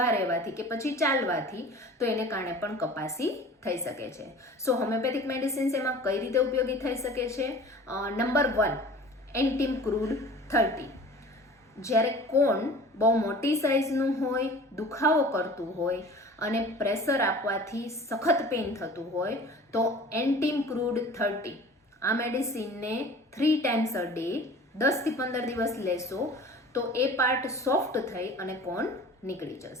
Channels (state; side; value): normal; both; correlation 0.43